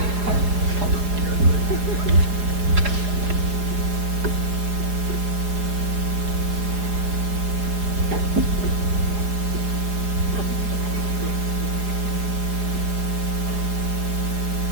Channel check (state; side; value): late; left; 4.8 ms